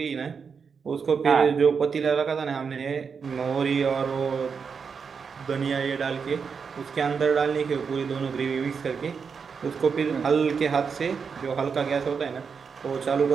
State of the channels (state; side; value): quieter; left; 5.9 dB